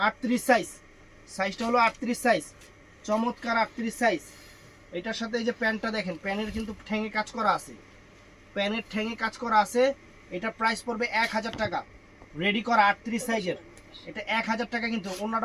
38 সাইজটা হলো 38 সাইজ, চমৎকার 38 সাইজ। এটার সাথে এই যে প্যান্টটা দেখেন, প্যানের কিন্তু ঠ্যাঙে কাজ করা আছে, এটা প্রাইস পড়বে 1000 টাকা, রেডি করা 38 সাইজের। এটা 1000 টাকা, কিন্তু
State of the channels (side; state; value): both; identical; correlation 1.00